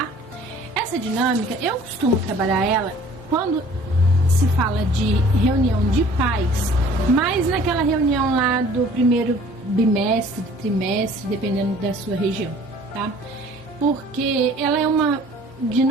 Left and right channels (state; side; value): normal; both; correlation 0.51